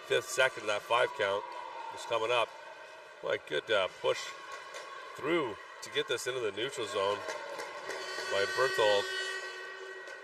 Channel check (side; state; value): both; identical; correlation 1.00